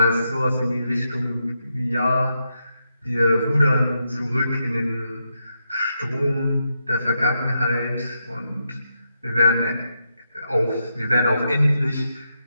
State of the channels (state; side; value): inverted; both; correlation -0.84